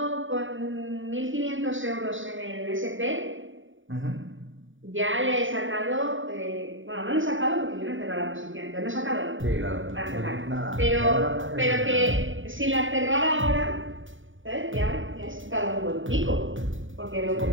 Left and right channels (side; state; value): left; late; 0.57 ms